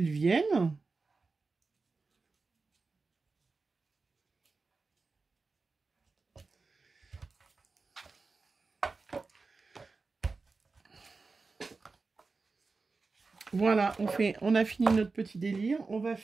viennent. Voilà, on a fini notre petit délire. On va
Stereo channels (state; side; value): quieter; left; 4.1 dB